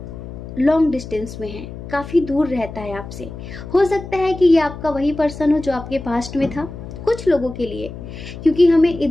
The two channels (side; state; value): left; noise; hum, 11 dB below the sound